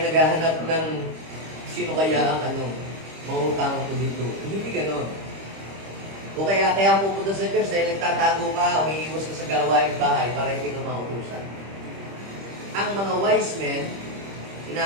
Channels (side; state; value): left; late; 25 ms